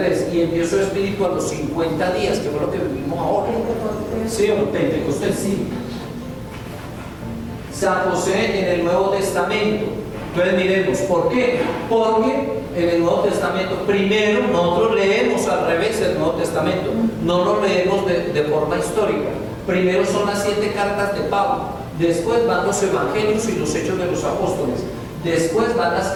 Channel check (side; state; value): both; identical; correlation 1.00